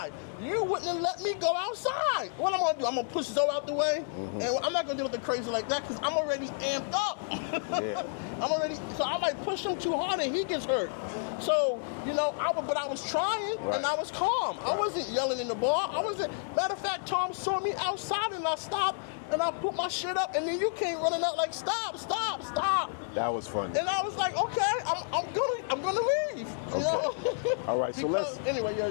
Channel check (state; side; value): silent; right; digital silence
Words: You wouldn't have let me go outside. What I'm going to do? I'm going to push Zoe out the way? And I'm not going to do nothing crazy like that because I'm already amped up. So I might push him too hard and he gets hurt. So, you know, I was trying and I was calm. I wasn't yelling in the bar. Matter of fact, Tom saw me outside and I stopped. And I put my shit up, and then you came running out like, stop. That was funny. And I was like, okay, I'm gonna leave. You know? All right. So